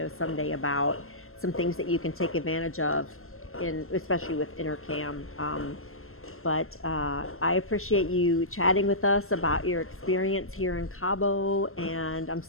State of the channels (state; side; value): late; right; 0.62 ms